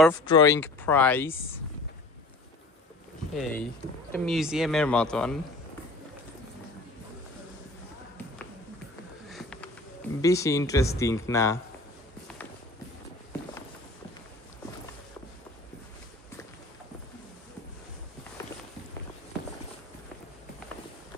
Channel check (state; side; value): normal; both; correlation 0.45